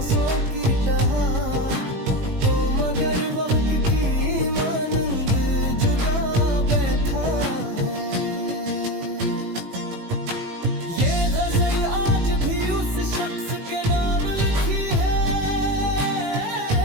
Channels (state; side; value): late; left; 18 ms